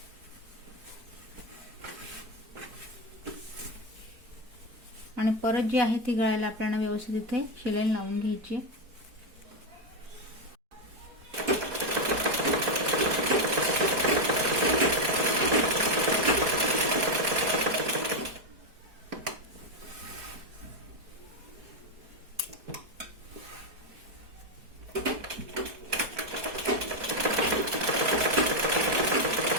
आणि परत जी आहे ती गळ्याला आपल्याला व्यवस्थित इथे शिलाई लावून घ्यायची.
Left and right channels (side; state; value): left; late; 4.5 ms